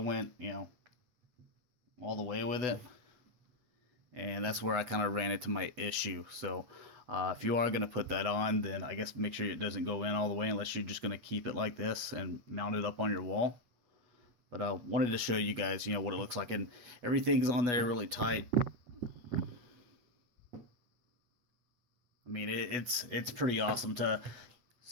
all the way with it, and that's where I kind of ran into my issue. So if you are going to put that on, then I guess make sure it doesn't go in all the way unless you're just going to keep it like this and mount it up on your wall. But I wanted to show you guys, what it looks like, and everything's on there really tight. I mean, it's pretty awesome to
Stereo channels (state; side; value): late; left; 8.1 ms